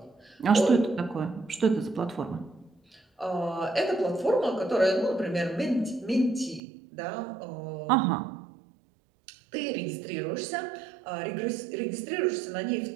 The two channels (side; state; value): left; drops out; at 6.6 s